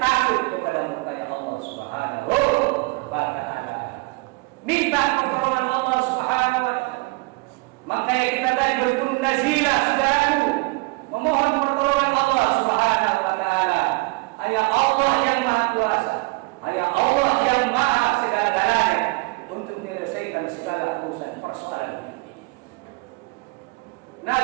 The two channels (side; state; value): left; quieter; 26.4 dB